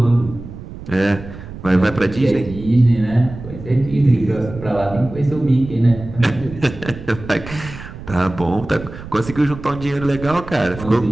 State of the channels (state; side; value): noise; right; rumble, 13 dB below the sound